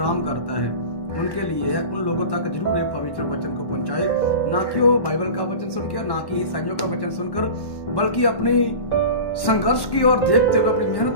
करता है, उनके लिए है। उन लोगों तक जरूर एक पवित्र वचन को पहुंचाए, ना कि वो बाइबल का वचन सुनकर, ना कि ईसाइयों का वचन सुनकर, बल्कि अपनी संघर्ष की ओर देखते हुए, अपनी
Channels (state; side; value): late; right; 1.1 ms